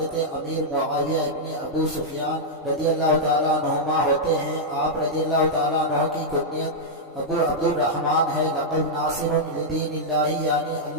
امیر معاویہ ابن ابو سفیان رضی اللہ تعالیٰ عنہما ہوتے ہیں۔ آپ رضی اللہ تعالیٰ عنہ کی کنیت ابو عبد الرحمن ہے۔ لقب ناصر لدین اللہ، یعنی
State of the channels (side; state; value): both; normal; correlation -0.06